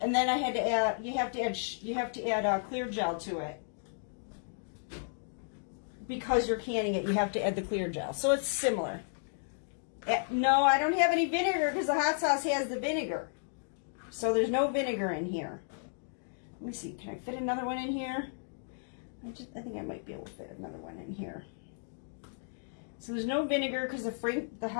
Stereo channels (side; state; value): right; silent; digital silence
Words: And then I had to add. You have to add clear gel to it. Because you're canning it, you have to add the clear gel. So it's similar. No, I don't have any vinegar because the hot sauce has the vinegar. So there's no vinegar in here. Let me see. Can I fit another one in here? I think I might be able to fit another one in here. So there's no vinegar because the